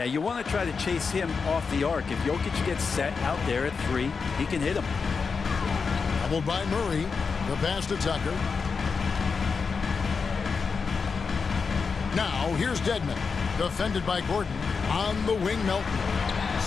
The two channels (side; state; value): right; quieter; 5.2 dB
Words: you want to try to chase him off the arc. If Jokic gets set out there at 3, he can hit him. Doubled by Murray. The pass to Tucker. Now, here's Dedmon. Defended by Gordon. On the wing, Melton.